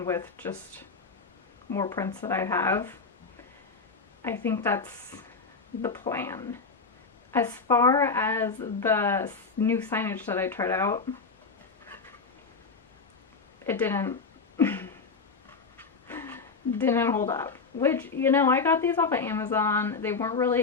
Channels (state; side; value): quieter; right; 4.6 dB